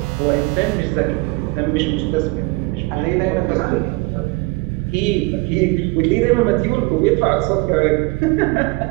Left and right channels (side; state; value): left; quieter; 24.0 dB